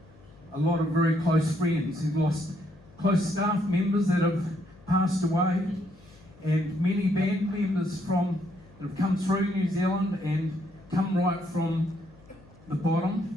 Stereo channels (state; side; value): noise; left; hum, 25 dB below the sound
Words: a lot of very close friends. He's lost close staff members that have passed away, and many band members that have come through New Zealand and come right from the bottom,